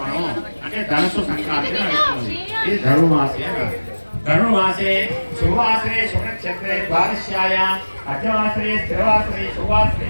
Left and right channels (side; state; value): both; inverted; correlation -1.00